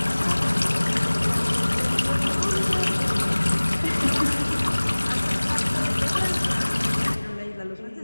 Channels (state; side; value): inverted; both; correlation -1.00